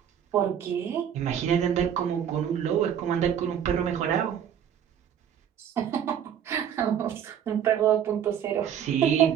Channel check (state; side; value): quieter; left; 9.1 dB